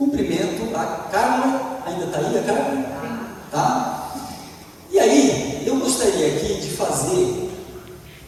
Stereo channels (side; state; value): both; identical; correlation 1.00